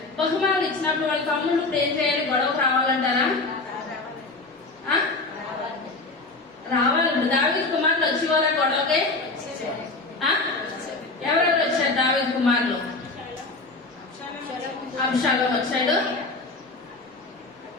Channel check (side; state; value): right; quieter; 3.4 dB